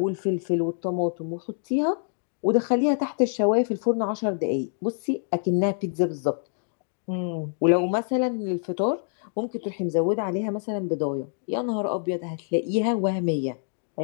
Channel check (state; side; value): silent; right; digital silence